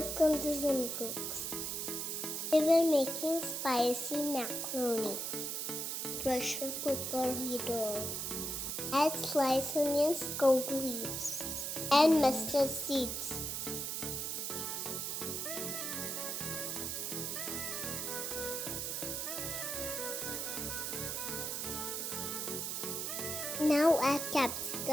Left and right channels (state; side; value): noise; right; hiss, 2 dB below the sound